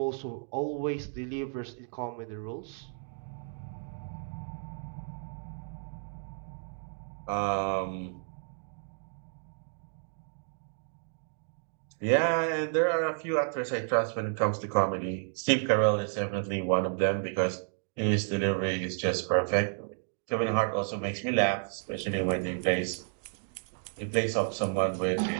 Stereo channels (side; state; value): left; silent; digital silence